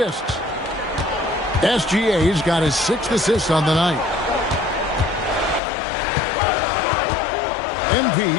SGA's got his 6th assist on the night. MP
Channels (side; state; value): right; drops out; at 5.6 s